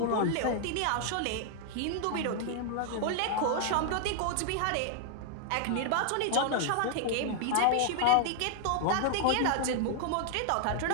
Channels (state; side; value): different; both; correlation 0.00